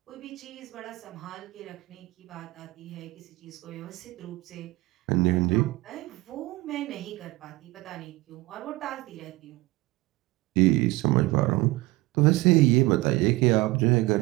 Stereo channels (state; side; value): quieter; left; 20.5 dB